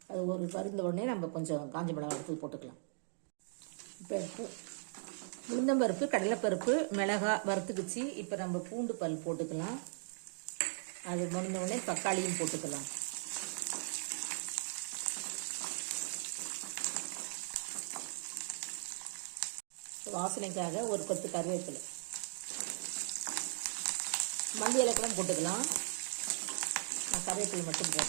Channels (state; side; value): silent; left; digital silence